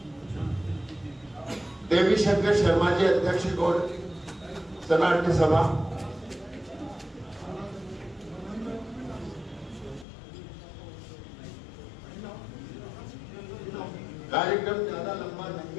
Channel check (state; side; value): drops out; right; at 10.1 s